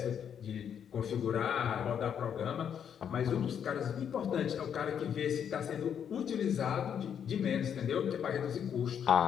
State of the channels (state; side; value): quieter; right; 8.3 dB